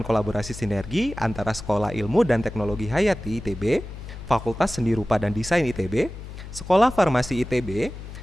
kolaborasi sinergi antara Sekolah Ilmu dan Teknologi Hayati ITB, Fakultas Seni Rupa dan Desain ITB, Sekolah Farmasi ITB,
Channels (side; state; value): left; noise; hum, 12 dB below the sound